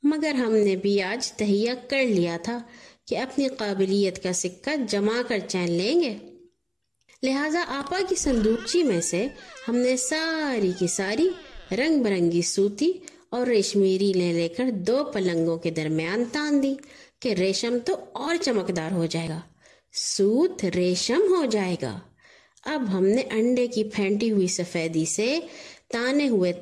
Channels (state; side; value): identical; both; correlation 1.00